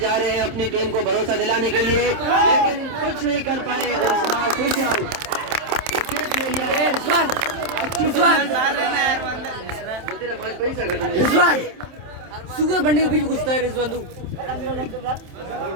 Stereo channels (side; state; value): left; late; 27 ms